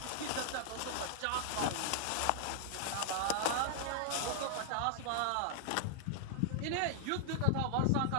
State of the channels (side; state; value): both; different; correlation -0.01